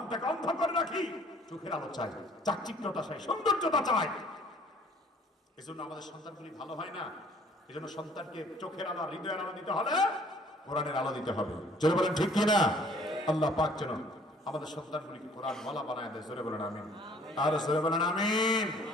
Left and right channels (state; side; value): normal; both; correlation 0.56